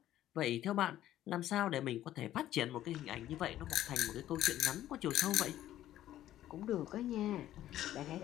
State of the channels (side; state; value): right; quieter; 13.0 dB